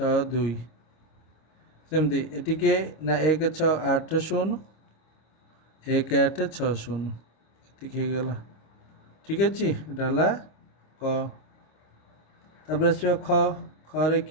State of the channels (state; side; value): late; right; 26 ms